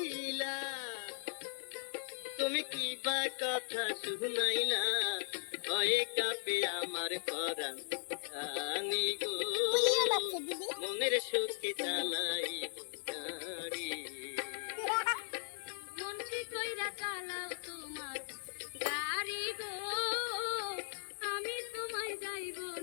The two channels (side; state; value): right; silent; 53 dB below the other